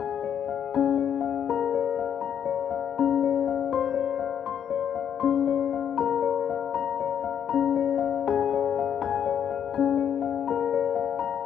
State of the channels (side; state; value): right; quieter; 8.7 dB